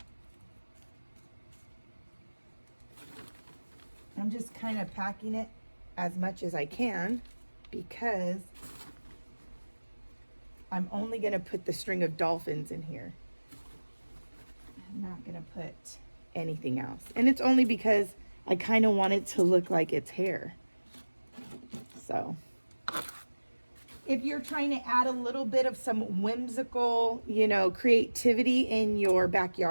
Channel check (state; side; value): inverted; both; correlation -1.00